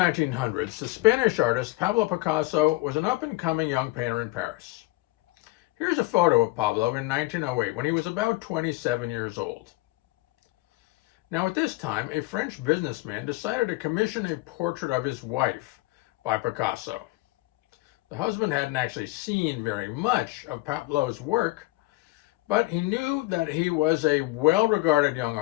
the Spanish artist Pablo Picasso was an up-and-coming young painter in Paris. Here's a photo of Pablo in 1908 when he was about 27 years old. Now at this time, a French businessman decided to commission a portrait of his wife by Picasso. The husband hadn't actually seen very much of Pablo's work, but he knew that he was a well-regarded young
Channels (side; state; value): right; quieter; 20.1 dB